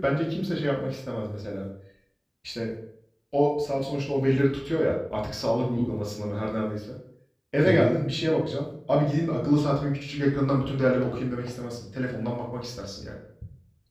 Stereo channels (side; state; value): both; identical; correlation 1.00